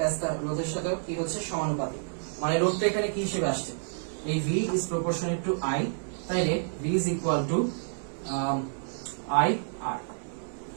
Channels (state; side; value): silent; left; 58 dB below the other